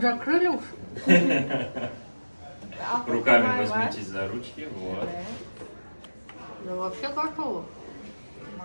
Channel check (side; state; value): both; inverted; correlation -1.00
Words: закрыли уж. Руками возьмитесь за ручки, вот. Я вообще готова.